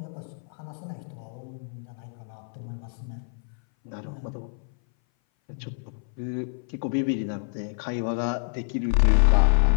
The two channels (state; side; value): silent; right; 58 dB below the other